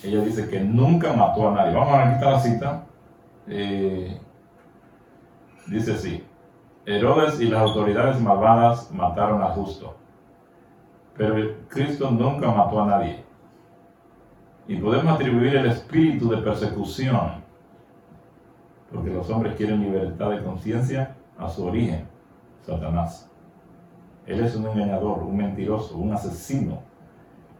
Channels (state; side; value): identical; both; correlation 1.00